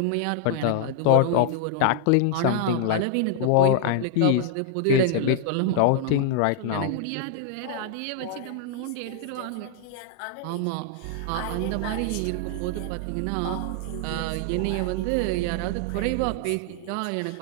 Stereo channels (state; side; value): different; both; correlation 0.00